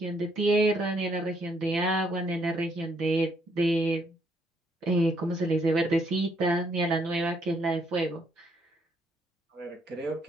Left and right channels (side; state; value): both; normal; correlation 0.71